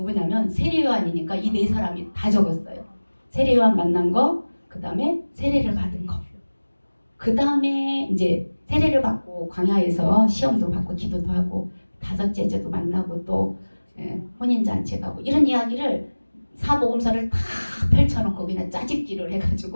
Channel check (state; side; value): inverted; both; correlation -1.00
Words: 세례 요한이니까 이 4사람이 다 적었어요. 세례 요한 만난 거, 그 다음에 세례를 받은 거. 그 다음에 이제 세례를 받고 광야에서 시험도 받고 기도도 하고 5째 제도 만나고 또 혼인잔치 가고 이런 이야기를 사복음서를 다 펼쳐놓고 그냥 짜집기를